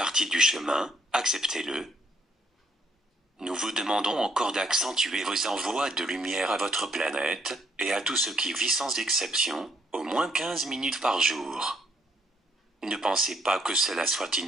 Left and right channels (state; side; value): normal; both; correlation 0.70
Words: du chemin, acceptez-le. Nous vous demandons encore d'accentuer vos envois de lumière à votre planète, et à tout ce qui vit sans exception, au moins 15 minutes par jour. Ne pensez pas que cela soit